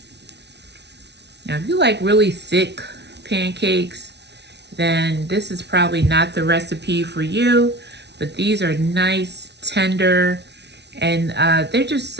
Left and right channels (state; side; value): late; left; 0.50 ms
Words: Now, if you like really thick pancakes, then this is probably not the recipe for you, but these are nice, tender, and they're just